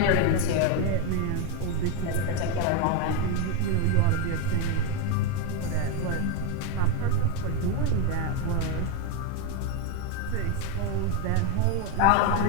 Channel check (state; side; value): different; both; correlation 0.01